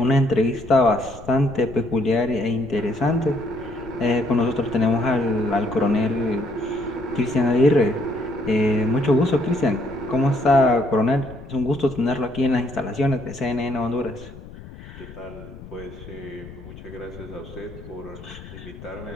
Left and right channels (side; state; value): left; noise; rumble, 16 dB below the sound